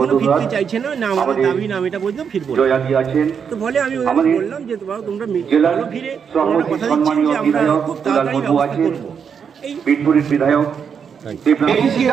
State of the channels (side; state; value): left; quieter; 6.9 dB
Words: ফিরতে চাইছে না, না আমাদের দাবি না, আমি এটা বললাম ফিরবো। তো বলে আমি ওদেরকে বললাম যে তোমরা ভালো ফিরে, তোমরা কথা দিচ্ছেন যে আমরা খুব তাড়াতাড়ি ব্যবস্থা করবো। এই বিধায়ক